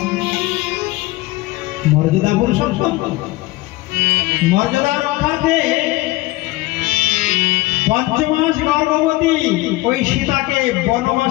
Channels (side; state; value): right; quieter; 19.7 dB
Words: মর্যাদা পুরুষোত্তম, মর্যাদা রক্ষার্থে 5 মাস গর্ভবতী ওই সীতাকে